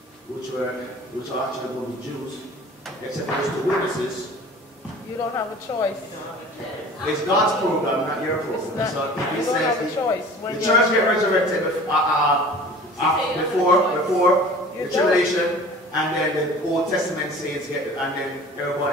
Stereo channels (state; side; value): normal; both; correlation 0.43